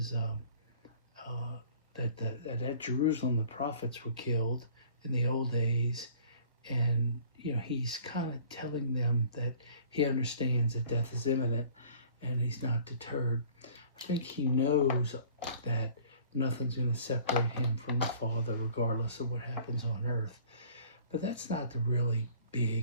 that at Jerusalem the prophets were killed in the old days, and he's kind of telling them that he understands that death is imminent, and he's not deterred. I think he knows that nothing's going to separate him from the Father, regardless of what happens on earth. But that's not the really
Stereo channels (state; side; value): inverted; both; correlation -0.51